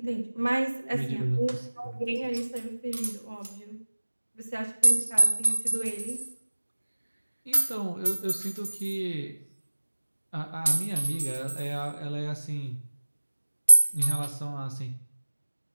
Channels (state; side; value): inverted; both; correlation -1.00